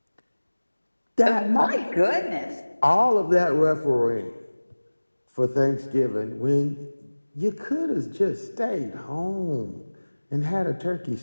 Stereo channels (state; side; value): inverted; both; correlation -1.00